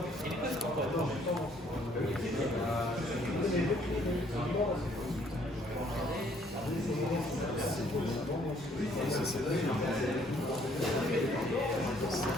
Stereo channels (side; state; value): both; normal; correlation 0.63